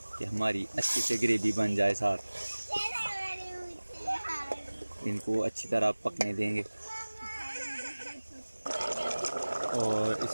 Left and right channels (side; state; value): both; inverted; correlation -1.00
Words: कि हमारी अच्छी से ग्रेवी बन जाए। साथ इनको अच्छी तरह पकने देंगे। और